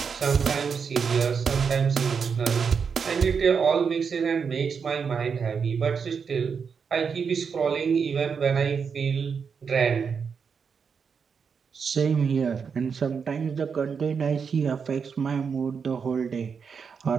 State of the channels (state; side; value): quieter; left; 6.1 dB